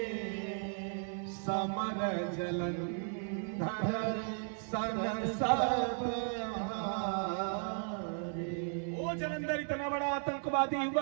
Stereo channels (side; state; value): left; silent; 54 dB below the other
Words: समर जलंधर सन सब वो जलंधर इतना बड़ा आतंकवादी